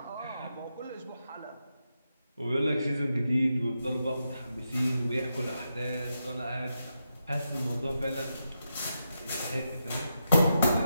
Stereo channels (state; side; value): inverted; both; correlation -0.85